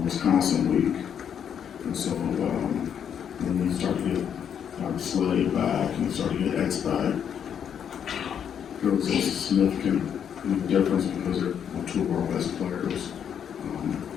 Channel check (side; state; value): right; quieter; 8.4 dB